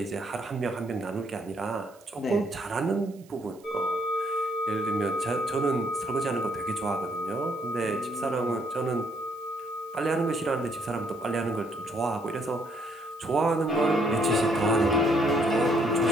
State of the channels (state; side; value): noise; right; hiss, 28 dB below the sound